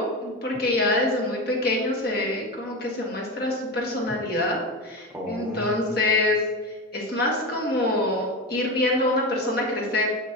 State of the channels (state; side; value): normal; both; correlation 0.21